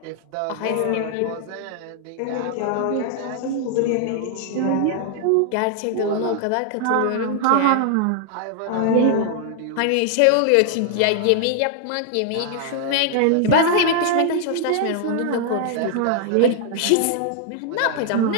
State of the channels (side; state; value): both; different; correlation 0.00